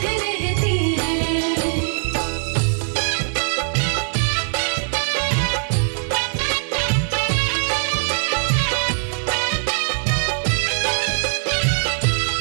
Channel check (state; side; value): silent; left; 65 dB below the other